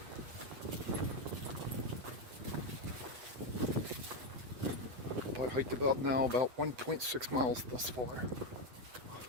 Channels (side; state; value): left; late; 8.0 ms